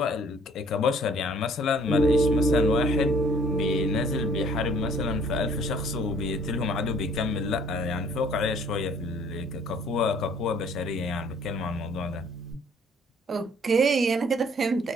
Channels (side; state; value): both; normal; correlation 0.58